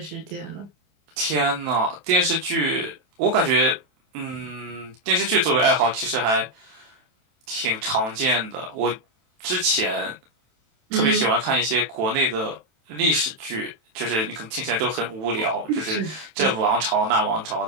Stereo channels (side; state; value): left; late; 27 ms